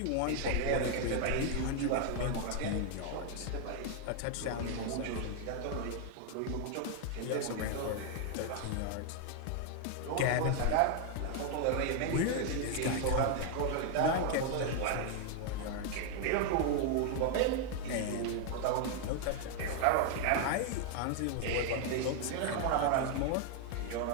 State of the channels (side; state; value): both; different; correlation 0.00